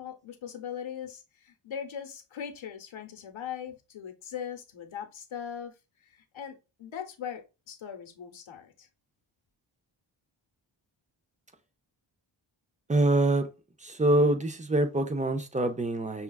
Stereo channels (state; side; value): normal; both; correlation 0.53